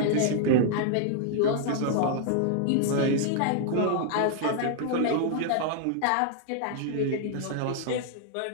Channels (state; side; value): different; both; correlation -0.01